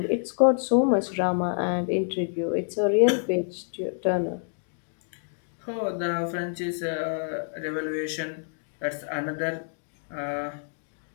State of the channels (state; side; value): silent; right; digital silence